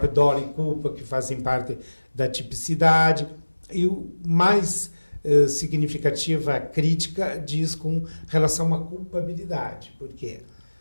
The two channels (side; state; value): both; inverted; correlation -1.00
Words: dolo e culpa, que fazem parte da tipicidade, e o mais significativa crítica diz com relação à culpabilidade. Por quê?